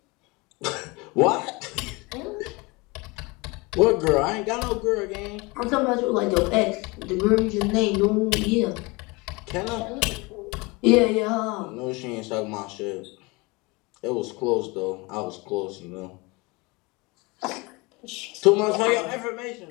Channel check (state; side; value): quieter; right; 25.7 dB